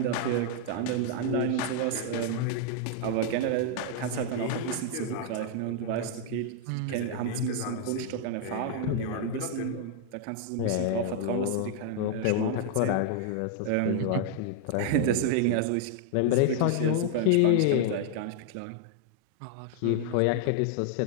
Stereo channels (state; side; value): different; both; correlation 0.00